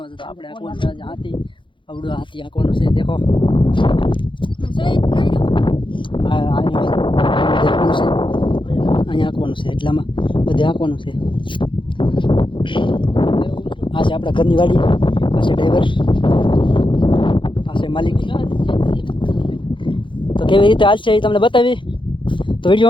છું. તો આપણે આંકવાનું છે આજે હાથી, આવડું હાથી આંકવાનું છે. દેખો અહીંયા આંકવાનું છે, એટલામાં બધે આંકવાનું છે. આ છે આપણા ઘરની વાડી, પાસે ડ્રાઈવર, પાસે માલિક. તો કેવી રીતે હાલ છે એ તમને બતાવી. તો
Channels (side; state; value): right; late; 0.24 ms